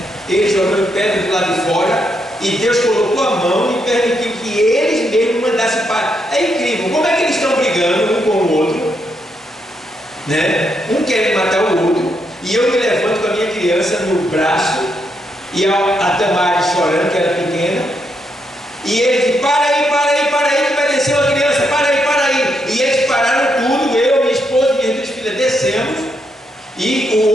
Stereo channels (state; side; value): normal; both; correlation 0.79